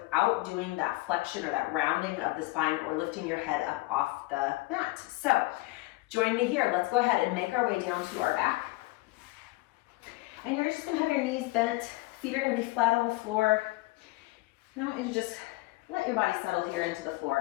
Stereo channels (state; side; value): quieter; right; 21.2 dB